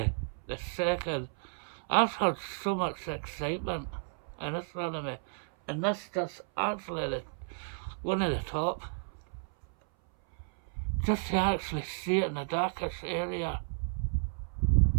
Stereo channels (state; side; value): silent; left; 56 dB below the other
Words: the second. I've had so much excitement in astronomy, and this just actually one of the top. Just to actually see it in the darkest area.